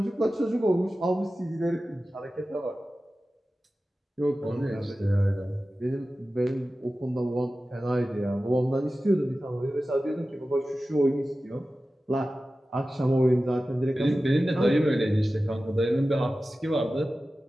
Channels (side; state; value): both; normal; correlation 0.95